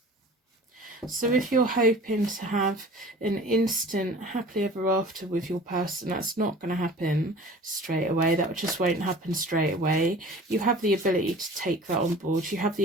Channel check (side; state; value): both; normal; correlation 0.43